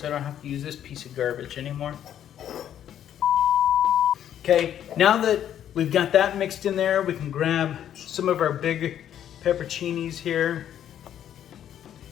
I don't have to use this piece of garbage anymore. Okay, now that we've got that mixed in there, we can grab some of our big pepperoncinis here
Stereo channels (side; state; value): right; quieter; 10.3 dB